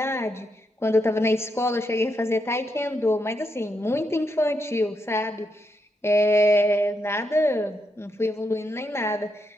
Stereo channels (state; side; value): normal; both; correlation 0.81